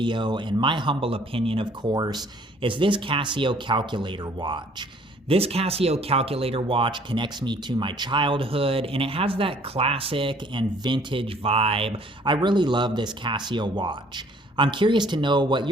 in my humble opinion of course, is this Casio calculator watch. This Casio calculator watch connects me to my childhood, and it has that classic and vintage vibe. I really love this Casio watch. I'm curious to know what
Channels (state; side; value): normal; both; correlation 0.58